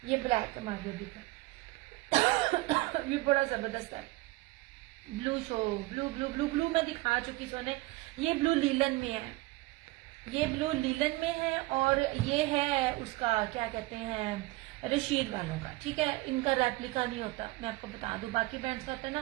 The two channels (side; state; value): left; quieter; 21.3 dB